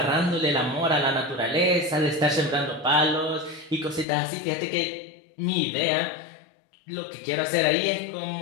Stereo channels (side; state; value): right; drops out; at 4.0 s